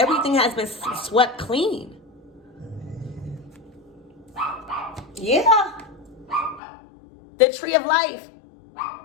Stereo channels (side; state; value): right; drops out; at 6.6 s